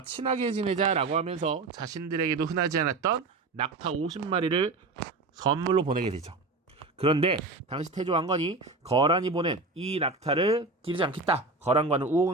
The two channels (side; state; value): left; quieter; 3.5 dB